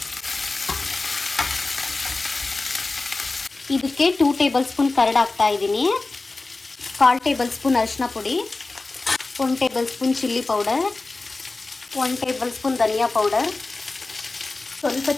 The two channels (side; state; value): right; quieter; 3.4 dB